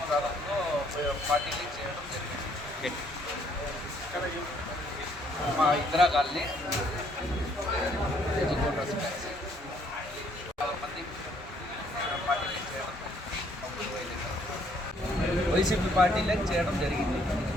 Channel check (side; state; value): both; normal; correlation 0.66